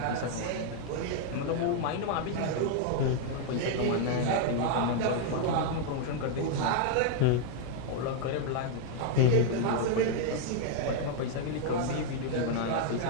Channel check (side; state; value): both; different; correlation 0.00